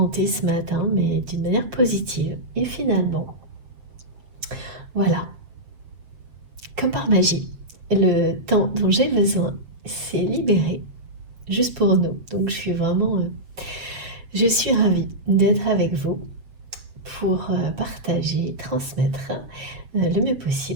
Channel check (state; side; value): late; left; 7.8 ms